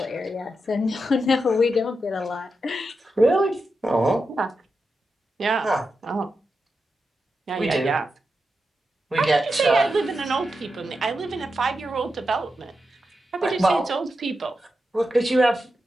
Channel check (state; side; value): normal; both; correlation 0.88